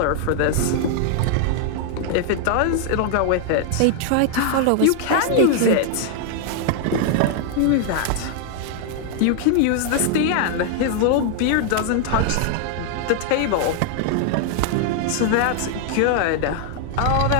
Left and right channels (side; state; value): both; different; correlation 0.00